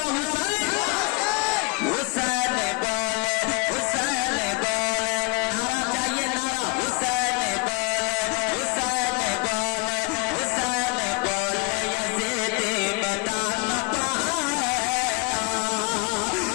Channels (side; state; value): right; quieter; 28.5 dB